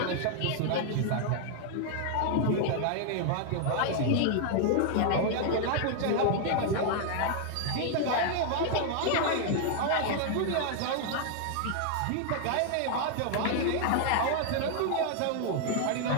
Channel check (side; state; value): both; different; correlation 0.00